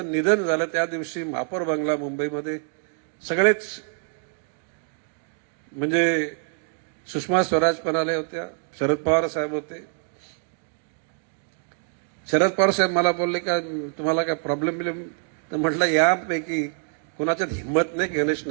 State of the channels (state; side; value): silent; left; 56 dB below the other